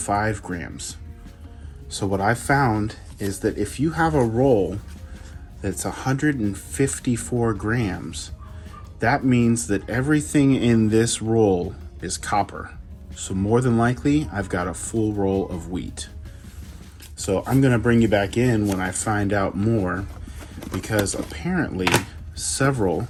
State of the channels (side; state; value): both; identical; correlation 1.00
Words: grams. So what I found is that if you have a roll that's 154 grams, that means that everything in this roll is copper. So more than likely, I've got a full roll of wheat. So I'm gonna bring you back in when I find out more, because apparently several